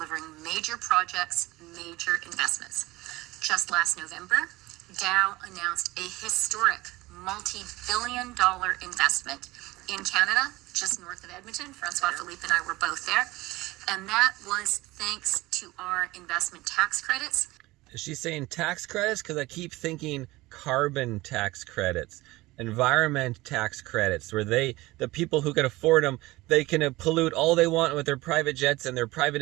major projects, major investments. Just last November, Dow announced a historic multi-billion-dollar investment in Canada, just north of Edmonton. Francois Philippe and I were both there. And that was thanks to our investment tax credits. Is she saying tax credits? Because I keep thinking carbon tax credits. environment tax credits where the people who can afford them, they can pollute all they want with their private jets and their private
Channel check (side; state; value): left; quieter; 19.7 dB